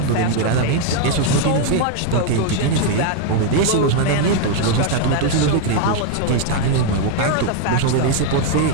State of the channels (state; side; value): different; both; correlation 0.01